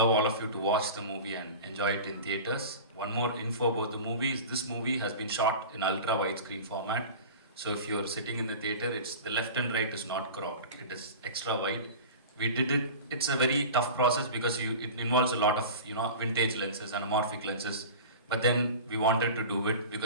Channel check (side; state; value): both; inverted; correlation -0.34